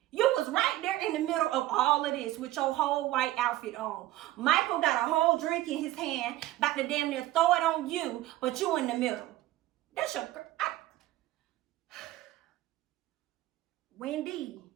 You was right there in the middle of all of this with your whole white outfit on. Michael got a whole drink in his hand, about to damn near throw it on you, but you in the middle. That's your girl. Wendy.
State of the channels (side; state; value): left; quieter; 15.7 dB